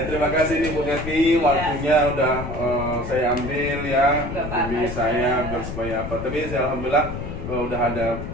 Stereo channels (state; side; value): noise; left; rumble, 7 dB below the sound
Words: kasih nih Bu Devi, waktunya udah saya ambil ya demi saya biar supaya apa. Tapi saya alhamdulillah udah ada